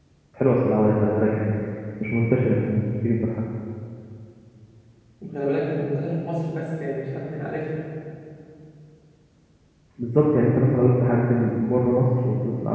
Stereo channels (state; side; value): identical; both; correlation 1.00